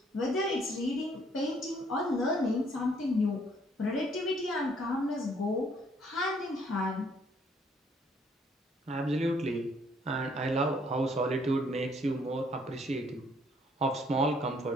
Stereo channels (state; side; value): normal; both; correlation 0.64